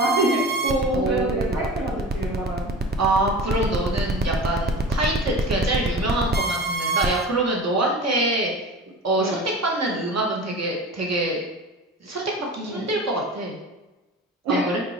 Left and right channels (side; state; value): both; normal; correlation 0.34